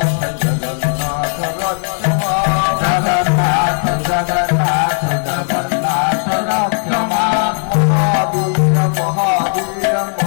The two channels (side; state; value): right; silent; digital silence